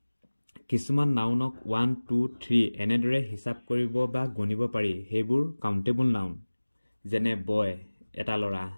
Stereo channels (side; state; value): both; inverted; correlation -1.00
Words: কিছুমান নাউনক 1 2 3 এনেদৰে হিচাপ কৰিব বা গণিব পাৰি সেইবোৰ কাউণ্টেবল নাউন যেনে বয় এটা ল'ৰা